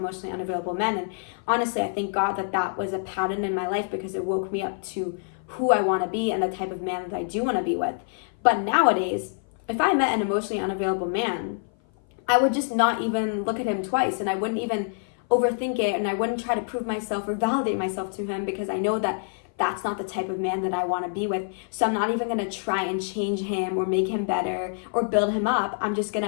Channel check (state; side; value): silent; right; 56 dB below the other